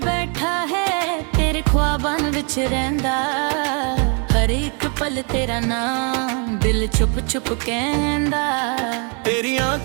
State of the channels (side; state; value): left; quieter; 37.3 dB